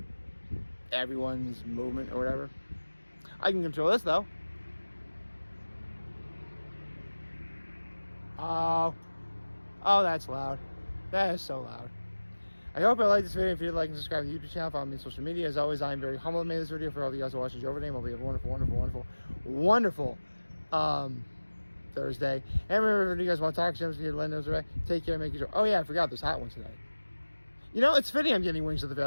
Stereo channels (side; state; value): both; inverted; correlation -1.00